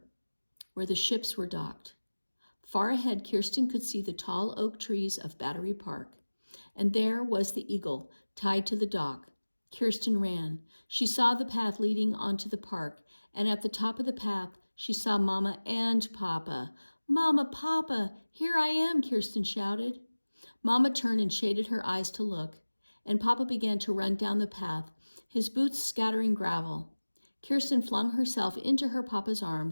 where the ships were docked. Far ahead, Kirsten could see the tall oak trees of Battery Park, and there was the eagle tied to the dock. Kirsten ran. She saw the path leading onto the park, and at the top of the path, she saw Mama and Papa. Mama, Papa, here I am, Kirsten shouted. Mama turned and shaded her eyes to look, and Papa began to run down the path, his boots scattering gravel. Kirsten flung herself into her Papa's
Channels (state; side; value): inverted; both; correlation -1.00